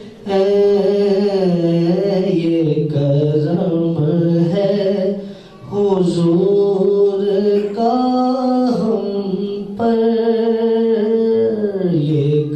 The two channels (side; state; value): both; identical; correlation 1.00